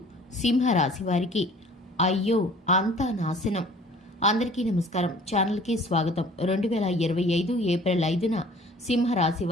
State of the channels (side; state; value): both; normal; correlation 0.50